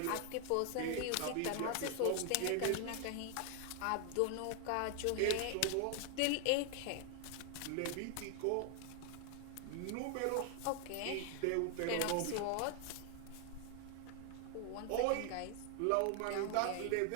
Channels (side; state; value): both; different; correlation 0.00